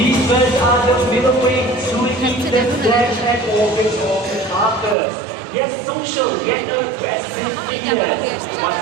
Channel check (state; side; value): drops out; left; at 5.0 s